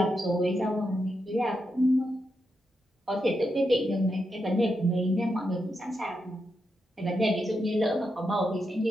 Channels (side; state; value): both; normal; correlation 0.85